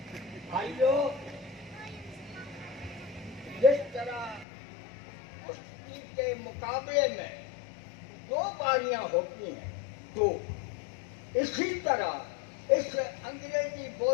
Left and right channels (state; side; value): drops out; right; at 4.5 s